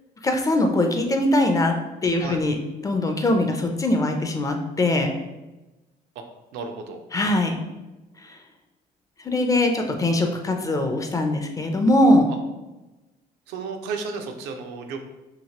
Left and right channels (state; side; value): normal; both; correlation 0.66